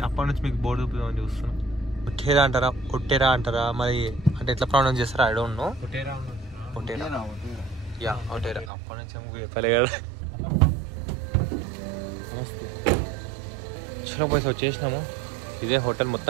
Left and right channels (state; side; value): drops out; left; at 8.7 s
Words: అప్పటి నుంచి మీకు బోర్డు చూపిద్దామని చూస్తున్నాను. ఒట్టేరా అంటారా మరి, అంటే ఎట్లా ప్రొనౌన్స్ చేస్తారా ఐ డోంట్ నో. ఒట్టేరా యా ఒట్టేరా. అప్పటి నుంచి చెప్పలే కదా. నమస్తే. చలో పోయి వచ్చేసినాము. ఇదే హోటల్.